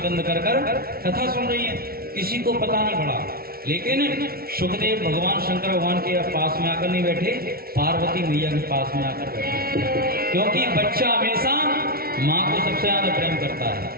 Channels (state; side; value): late; left; 0.44 ms